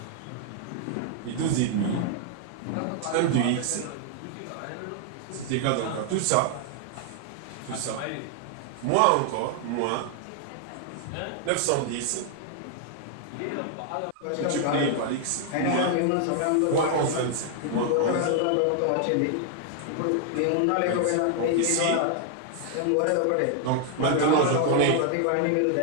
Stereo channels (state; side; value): different; both; correlation 0.00